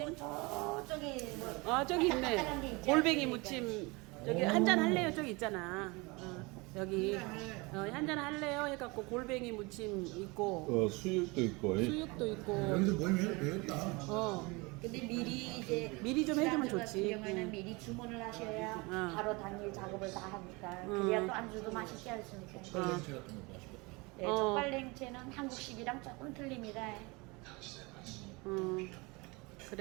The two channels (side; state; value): left; quieter; 26.1 dB